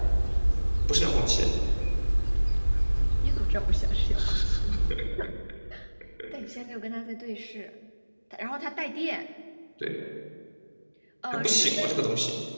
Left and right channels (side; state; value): both; inverted; correlation -1.00